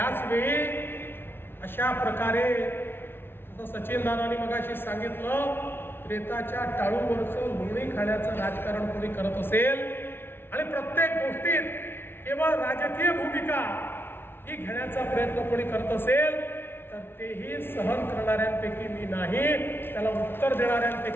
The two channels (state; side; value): late; right; 0.11 ms